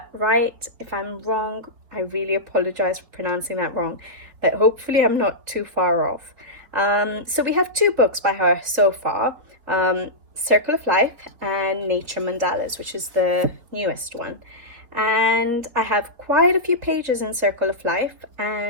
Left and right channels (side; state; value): left; late; 3.8 ms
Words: right. If I'm wrong, I really apologize for pronouncing that wrong, but hopefully I'm not too far off. So we have two books by her so far, Circle of Life and Nature Mandalas, which is the newest one. And I have quite a few pages in Circle of Life